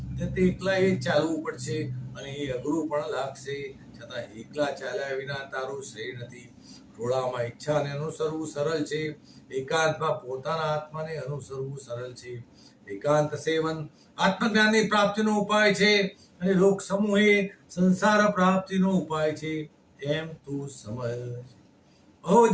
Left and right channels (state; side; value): identical; both; correlation 1.00